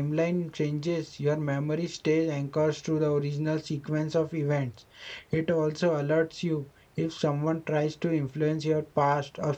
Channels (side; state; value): both; identical; correlation 1.00